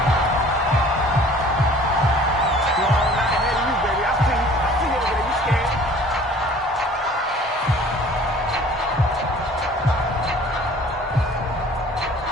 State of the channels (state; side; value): normal; both; correlation 0.50